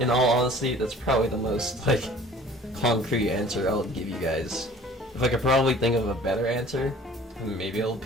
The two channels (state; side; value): normal; both; correlation 0.49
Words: all honesty, that's probably the most like concrete answer I'll give you guys. If I could probably think of a better answer, maybe it'll